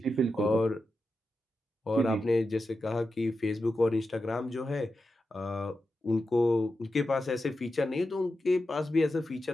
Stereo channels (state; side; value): normal; both; correlation 0.90